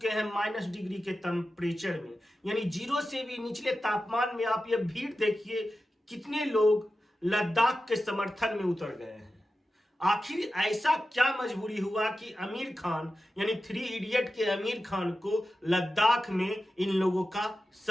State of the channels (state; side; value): normal; both; correlation 0.93